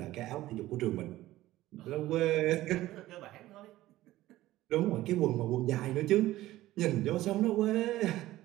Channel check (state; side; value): quieter; left; 16.0 dB